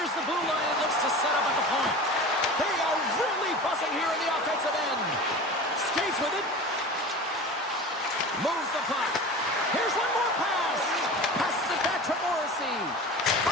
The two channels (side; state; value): both; normal; correlation 0.34